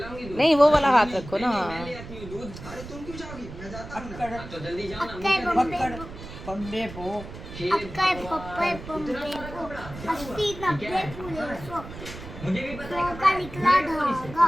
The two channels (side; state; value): right; noise; rumble, 13 dB below the sound